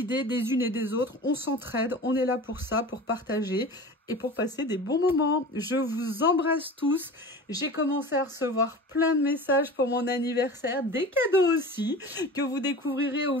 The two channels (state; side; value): normal; both; correlation 0.36